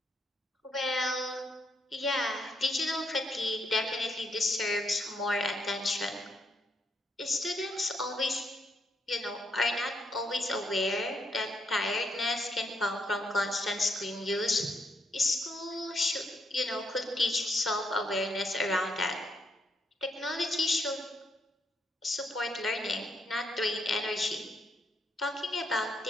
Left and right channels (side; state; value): both; normal; correlation 0.77